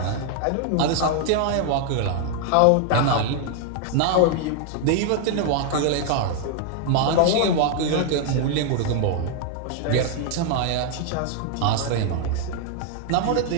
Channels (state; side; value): different; both; correlation 0.00